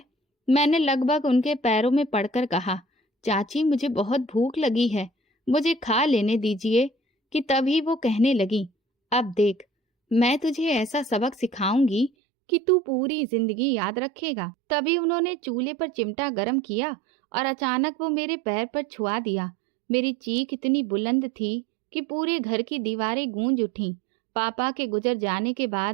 मैंने लगभग उनके पैरों में पड़कर कहा, चाची मुझे बहुत भूख लगी है, मुझे खा लेने दीजिए। कि तभी वो कहने लगी, अब देख, मैं तुझे ऐसा सबक सिखाऊंगी कि तू पूरी जिंदगी याद रखेगा। तभी उन्होंने चूल्हे पर चिमटा गरम किया और अचानक वो मेरे पैर पर छुआ दिया। मेरी चीख इतनी बुलंद थी कि पूरे घर की दीवारें गूंज उठीं। पापा के गुजर जाने के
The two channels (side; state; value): left; drops out; at 12.1 s